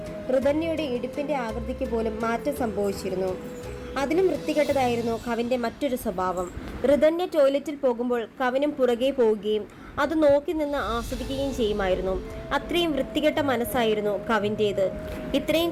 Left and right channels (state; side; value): identical; both; correlation 1.00